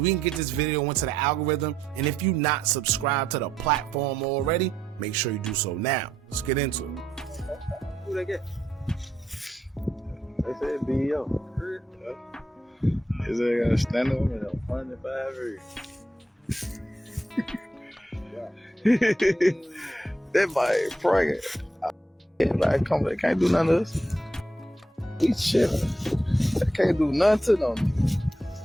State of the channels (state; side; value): normal; both; correlation 0.78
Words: can get this video into the algorithm, and if you're not subscribed to the platform already, make sure you do so now. Let's get into it. Who they get? They said BEO. Is they gonna stand up? 105 years. That boy pregnant. Everybody come, they can't do nothing to us. He chilling. They can't do nothing to them.